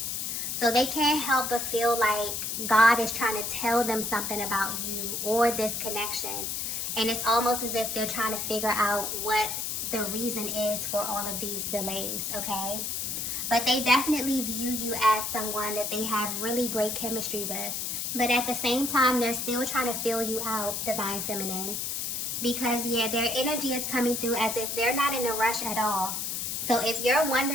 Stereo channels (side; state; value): left; noise; hiss, 2 dB below the sound